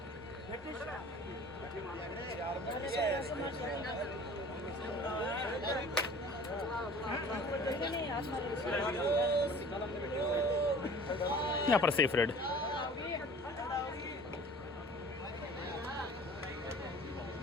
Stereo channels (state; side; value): normal; both; correlation 0.46